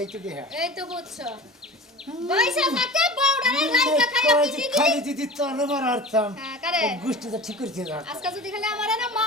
দে এই তো বুঝছো পয়সা থাকে বউডারে লাইকা খাইয়া পিটি দিবি খালি দিদি তোর মার আরতাম হ্যাঁ করে গুষ্টি তো ঠিক করছে না আজকে যদি খালি আমারে না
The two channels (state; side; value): normal; both; correlation 0.35